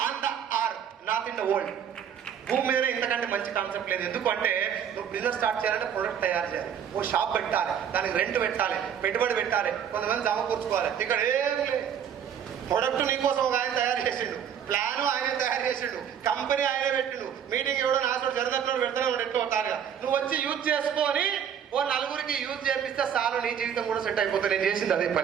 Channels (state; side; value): quieter; left; 8.6 dB